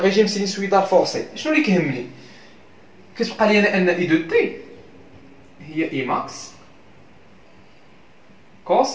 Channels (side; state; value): both; identical; correlation 1.00